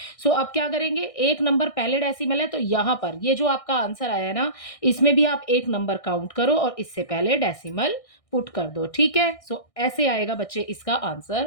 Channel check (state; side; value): late; right; 1.6 ms